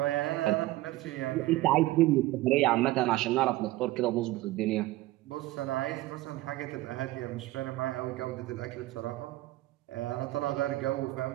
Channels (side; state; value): left; quieter; 17.3 dB